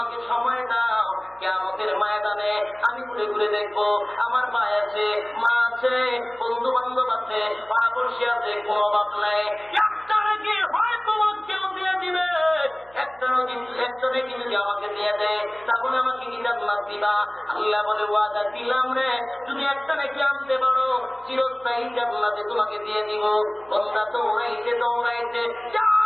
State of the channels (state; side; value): noise; right; hum, 27 dB below the sound